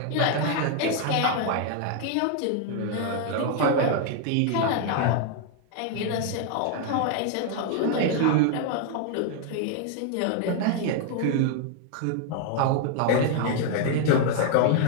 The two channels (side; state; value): both; different; correlation 0.00